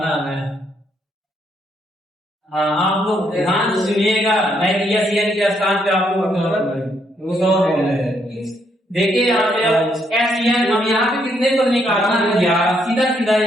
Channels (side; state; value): both; normal; correlation 0.74